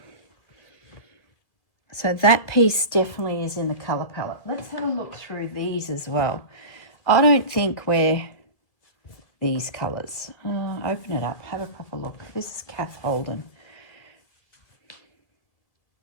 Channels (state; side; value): late; right; 1.8 ms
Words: So that piece definitely is in the colour palette. Let's have a look through these as well. I don't think we're these colours. Open it up, have a proper look. This is Kath Holden.